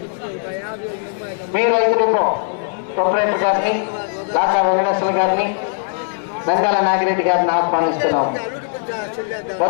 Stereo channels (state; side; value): silent; right; digital silence